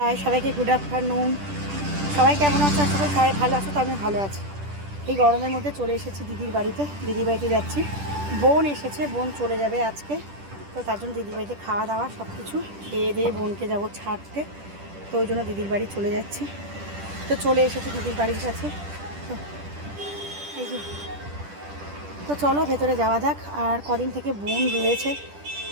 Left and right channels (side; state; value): left; late; 10 ms